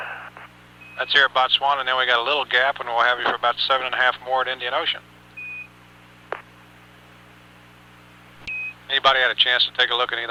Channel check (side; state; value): both; identical; correlation 1.00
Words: That's here at Botswana, and then we got a little gap, and we'll have you for about 7.5 more at Indian Ocean. Anybody had a chance to take a look at any